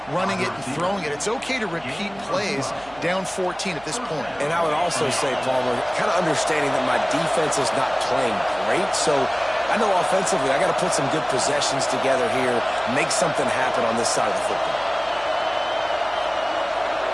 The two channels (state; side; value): noise; right; hum, 23 dB below the sound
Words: running it and throwing it. It's okay to repeat plays down 14 at this point. And I would also say, Palmer, kind of understanding that my defense is not playing great, so I know offensively I got to put some good possessions together here, make something happen on this side of the football.